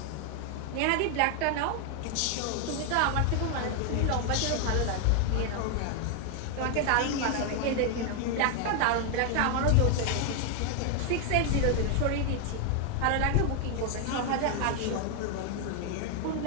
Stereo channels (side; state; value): both; different; correlation 0.00